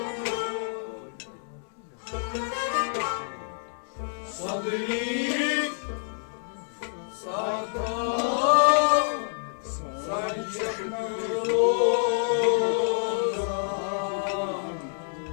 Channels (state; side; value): silent; right; digital silence